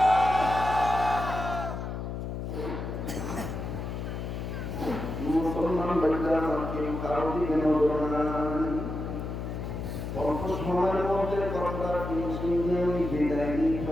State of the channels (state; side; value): noise; left; hum, 5 dB below the sound